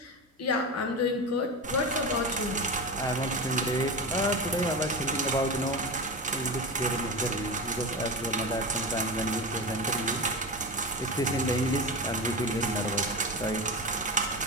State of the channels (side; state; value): both; normal; correlation 0.23